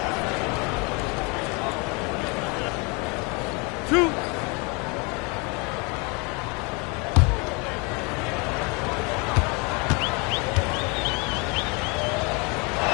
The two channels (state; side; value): quieter; right; 29.9 dB